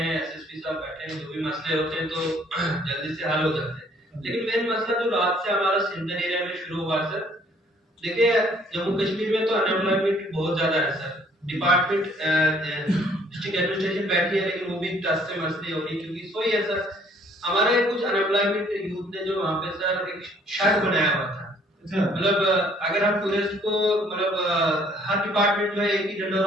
एसएसपी साहब बैठे हैं, जो भी मसले होते हैं तो जल्दी से हल हो जाते हैं। लेकिन मेन मसला जो रात से हमारा सिंधन एरिया में शुरू हुआ सर, देखिए जम्मू कश्मीर में तो अनएम्प्लॉयमेंट बहुत ज्यादा है सर। डिपार्टमेंट डिस्ट्रिक्ट एडमिनिस्ट्रेशन बैठी है लेकिन वो भी टस से मस नहीं हो रही, क्योंकि सोई है सर, हमारे कुछ अनएम्प्लॉयमेंट यूथ ने जो वहाँ पे सर एक शर्त बनाया हुआ था। मतलब अगर हम टूरिस्ट को मतलब हर डिपार्टमेंट में एक ही जनरल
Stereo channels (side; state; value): both; normal; correlation 0.60